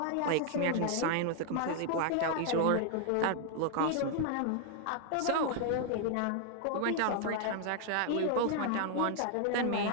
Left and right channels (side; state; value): both; different; correlation 0.00